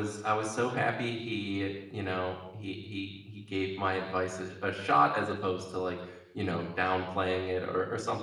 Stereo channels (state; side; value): identical; both; correlation 1.00